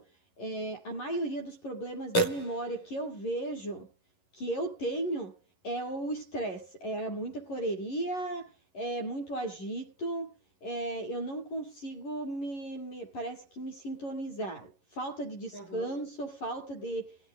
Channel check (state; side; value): late; right; 11 ms